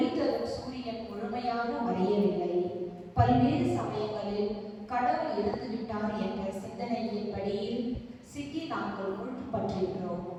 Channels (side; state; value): both; identical; correlation 1.00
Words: தரும் சூரியன் முழுமையாக மறையவில்லை. பல்வேறு சமயங்களில் கடவுள் இறந்துவிட்டார் என்ற சிந்தனையின் படியில் சிக்கி நாங்கள் முழுப்பற்றிருக்கிறோம்.